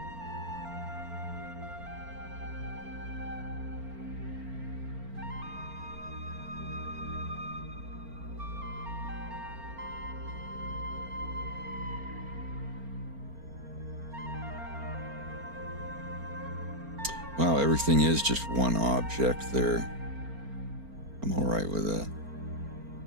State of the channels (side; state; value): left; late; 4.4 ms